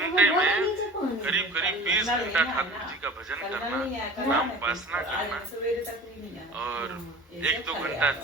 में करीब 20 घंटा ठाकुर जी का भजन करना, नाम उपासना करना, और 1-2 घंटा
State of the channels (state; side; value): normal; both; correlation 0.40